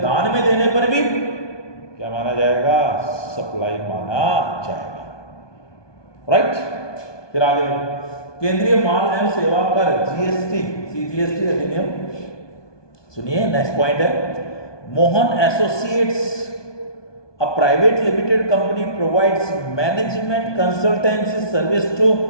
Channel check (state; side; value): late; right; 1.2 ms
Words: दान में देने पर भी क्या माना जाएगा, सप्लाई माना जाएगा, राइट। फिर आगे केंद्रीय माल एवं सेवा कर जीएसटी सीजीएसटी अधिनियम, सुनिए नेक्स्ट पॉइंट है, Mohan associates a private limited company provides management consultancy service to